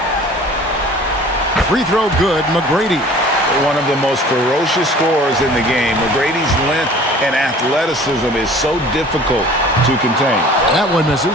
Free throw good, McGrady. One of the most ferocious scorers in the game. McGrady's length and athleticism is so difficult to contain. That one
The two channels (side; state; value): both; normal; correlation 0.47